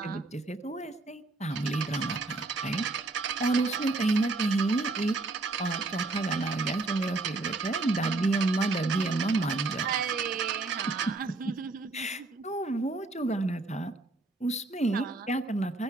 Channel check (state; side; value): quieter; left; 3.2 dB